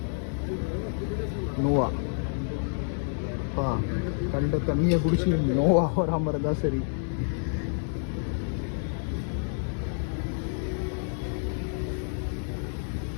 நோவா. கண்ட தண்ணியை குடிச்சு நோவா வராமல் இருந்தால் சரி.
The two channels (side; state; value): right; silent; digital silence